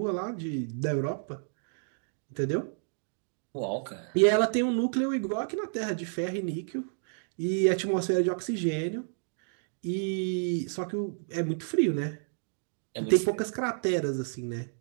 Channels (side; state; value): left; silent; digital silence